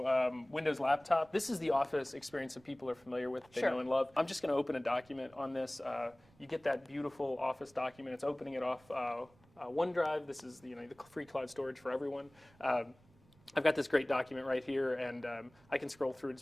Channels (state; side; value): noise; right; rumble, 29 dB below the sound